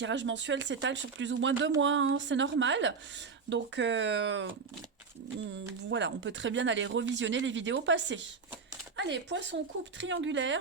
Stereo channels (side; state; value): left; quieter; 5.2 dB